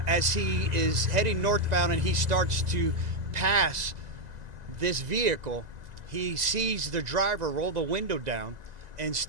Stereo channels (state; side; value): late; left; 2.0 ms